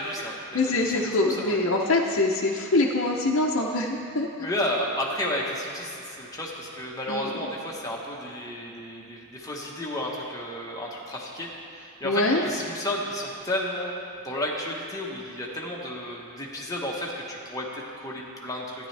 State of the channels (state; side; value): normal; both; correlation 0.16